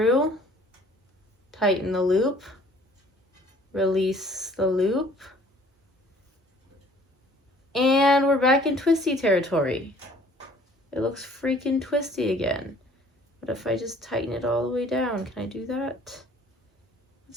tighten the loop, release the loop, and we're back in twisty territory. It looks freaking twisty again. What if I just tighten it all the way down? Can I do that?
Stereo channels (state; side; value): normal; both; correlation 0.55